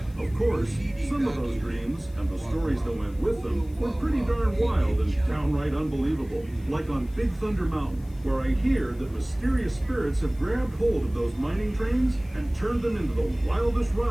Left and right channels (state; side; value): noise; left; hiss, 28 dB below the sound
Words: Of course, some of those dreams and the stories that went with them were pretty darn wild and downright unbelievable. Like on Big Thunder Mountain, where I hear that mysterious spirits have grabbed hold of those mining trains and turned them into the wildest